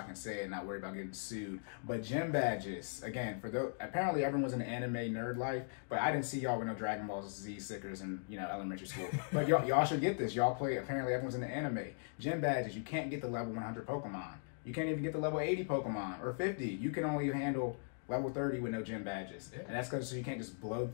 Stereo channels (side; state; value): right; silent; digital silence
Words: can say it and not worry about getting sued. But gym badges, again, for those, apparently everyone's in the anime nerd life, but I didn't see y'all with no Dragon Ball Z stickers in elementary school. But y'all should get this. Y'all play. Apparently everyone's in the anime. Gym badges. You can't get the level 100 Pokemon. You can't even get the level 80 Pokemon or 50. You can only handle level 30 with no gym badges. Yeah. And that's because you can't just blow